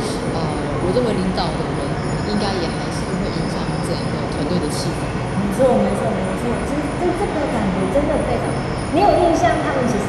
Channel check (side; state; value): both; identical; correlation 1.00